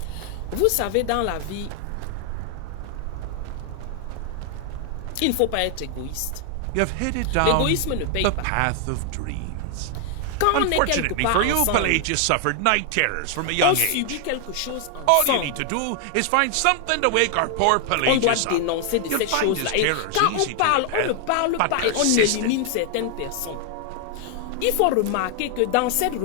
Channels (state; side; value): different; both; correlation 0.00